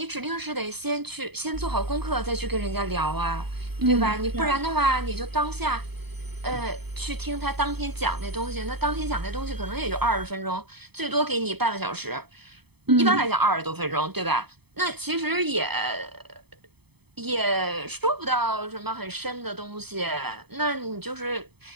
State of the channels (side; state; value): left; late; 0.98 ms